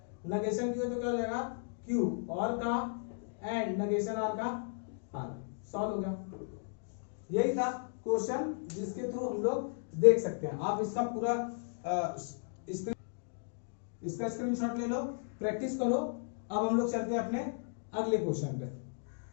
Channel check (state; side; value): silent; right; digital silence